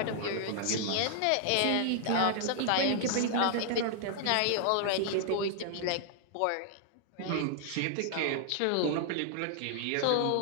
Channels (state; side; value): different; both; correlation 0.00